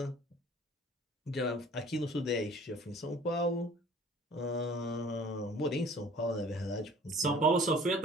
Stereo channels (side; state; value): both; normal; correlation 0.49